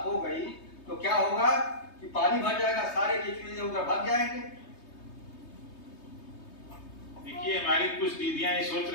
हो गई तो क्या होगा कि पानी भर जाएगा, सारे केचुए उधर भाग जाएंगे। देखिए हमारी कुछ दीदियां ये सोच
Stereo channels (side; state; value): right; late; 3.2 ms